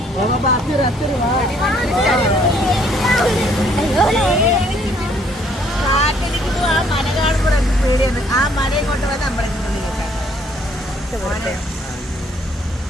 ആ മല കാണുമ്പോൾ എനിക്ക് പേടിയാണ്. ആ മലയും കൊണ്ട് വന്ന് അമ്പലത്തിൽ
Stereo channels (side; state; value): both; normal; correlation 0.64